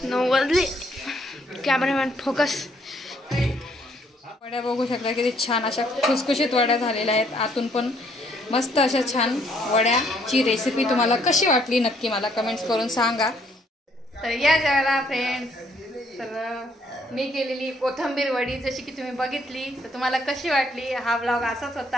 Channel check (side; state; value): both; normal; correlation 0.67